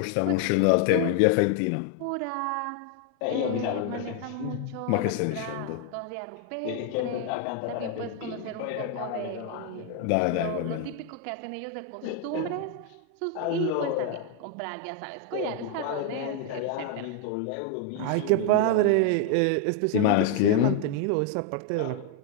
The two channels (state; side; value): different; both; correlation 0.00